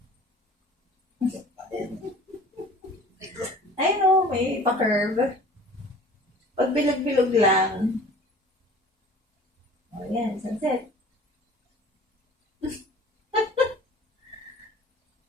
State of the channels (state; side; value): normal; both; correlation 0.46